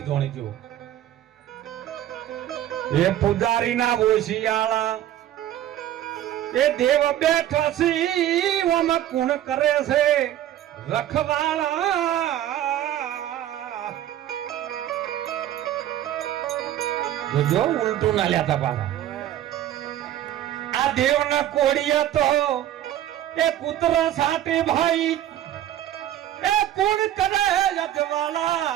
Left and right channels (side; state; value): left; quieter; 12.3 dB